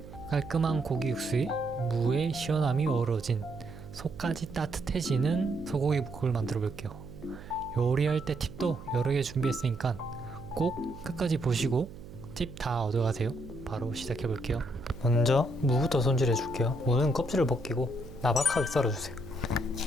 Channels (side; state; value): right; noise; hum, 15 dB below the sound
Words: 깔끔한 고기 육수에 무의 시원함이 어우러진 속까지 따뜻해지는 소고기 묵국을 만들어 볼게요. 요리할 때 팁도 여러 개 준비했으니까 꼭 끝까지 보시고 팁 다 얻어가세요. 바로 시작해 볼게요. 먼저 무부터 손질해 줄게요. 무는 껍질을 벗기고 나박하게 썰어주세요.